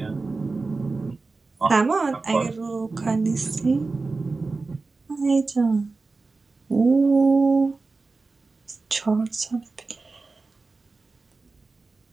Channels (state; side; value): quieter; left; 3.8 dB